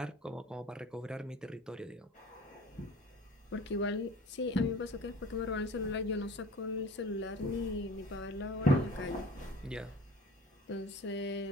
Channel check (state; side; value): normal; both; correlation 0.43